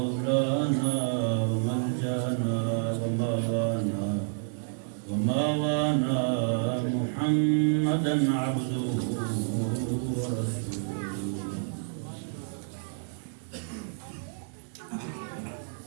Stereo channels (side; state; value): left; silent; digital silence